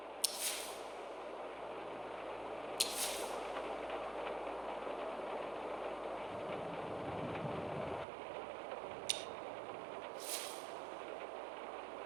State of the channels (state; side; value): drops out; left; at 8.1 s